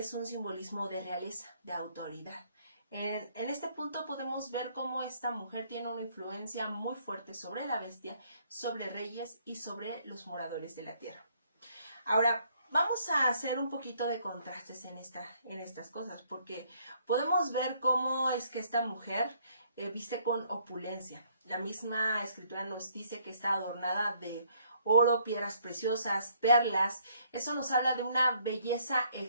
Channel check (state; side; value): inverted; both; correlation -0.66